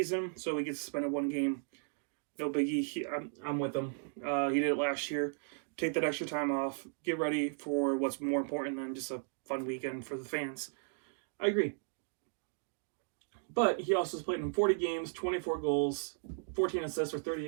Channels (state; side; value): silent; left; digital silence